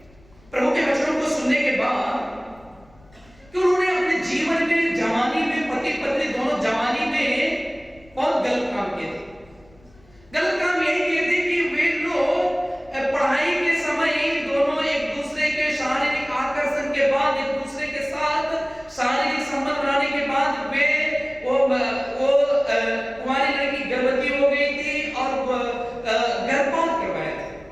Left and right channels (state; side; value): noise; left; rumble, 28 dB below the sound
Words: प्रभु के वचनों को सुनने के बाद कि उन्होंने अपने जीवन में, जवानी में, पति पत्नी दोनों जवानी में बहुत गलत काम किए थे। गलत काम यही किए थे कि वे लोग पढ़ाई के समय दोनों एक दूसरे के शारीरिक आकर्षण के बाद, एक दूसरे के साथ शारीरिक संबंध बनाने के बाद वे कुंवारी लड़की गर्भवती हो गई थी और गर्भपात करवाया था।